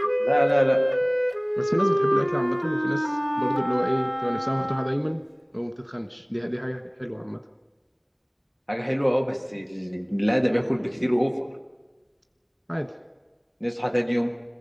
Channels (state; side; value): identical; both; correlation 1.00